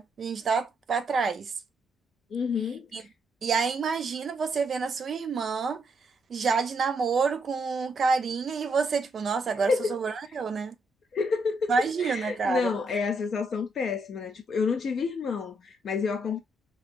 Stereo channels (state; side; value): normal; both; correlation 0.76